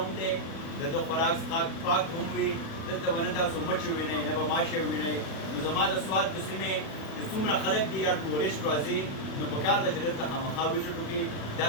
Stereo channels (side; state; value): right; late; 37 ms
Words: دی د ده خوراک څښاک پاک هم وي دلته به نه تاسو مچ ووینئ نه به ماشې ووینئ نو زما د سوات د سیمې چې څومره خلک دي یا ټورسټ راځي نو پکار ده چې دلته خامخا وزټ وکړي دا